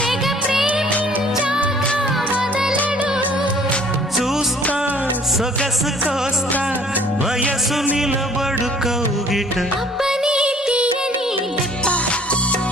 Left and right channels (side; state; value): both; normal; correlation 0.55